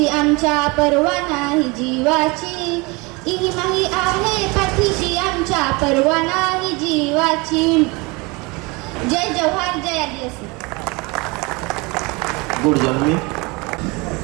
आमच्या परवा नाही जीवाची, इमाही आहे पाठीशी आमच्या परवा नाही जीवाची. जय जवाहर, जय आदिवासी. गुड जन्मी.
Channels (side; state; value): left; quieter; 26.3 dB